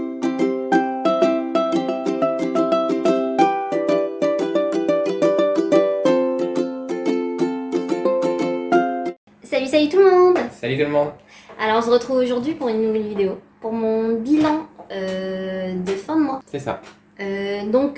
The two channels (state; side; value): identical; both; correlation 1.00